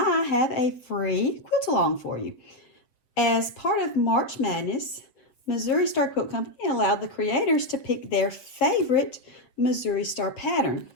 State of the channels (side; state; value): right; late; 7.9 ms